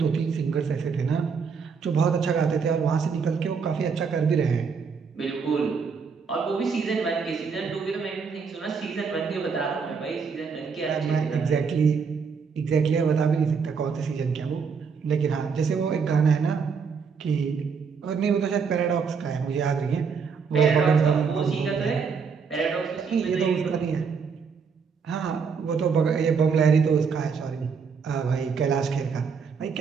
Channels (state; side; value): quieter; left; 5.8 dB